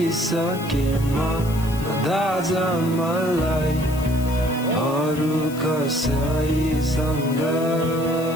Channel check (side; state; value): left; noise; hiss, 16 dB below the sound